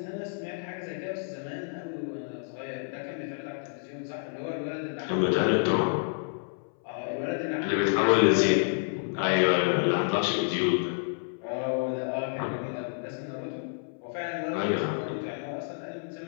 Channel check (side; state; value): right; silent; 58 dB below the other